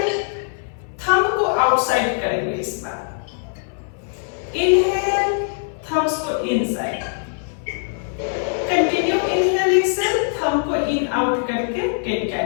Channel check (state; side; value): silent; right; 60 dB below the other